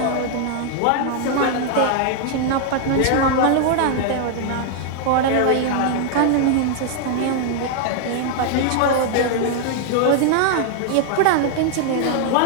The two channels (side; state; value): both; different; correlation 0.00